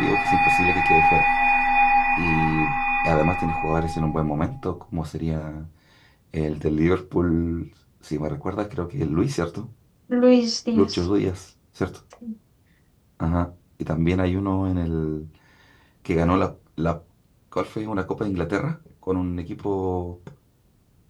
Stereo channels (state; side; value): identical; both; correlation 1.00